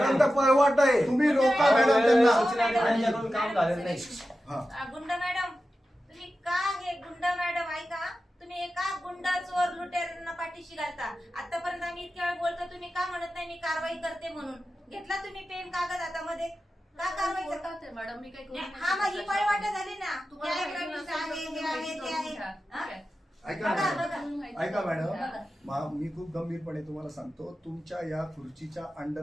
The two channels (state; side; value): normal; both; correlation 0.93